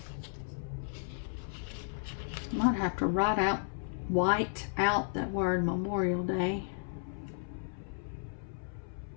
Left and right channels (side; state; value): right; silent; 55 dB below the other